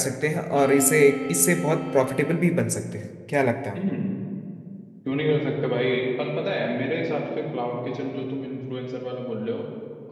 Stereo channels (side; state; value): both; identical; correlation 1.00